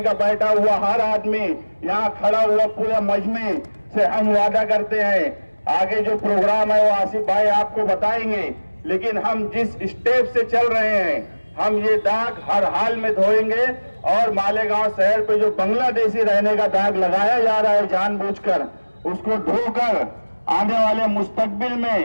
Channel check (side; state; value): both; inverted; correlation -1.00